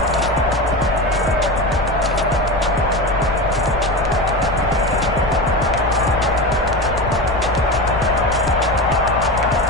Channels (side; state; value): left; noise; rumble, 8 dB below the sound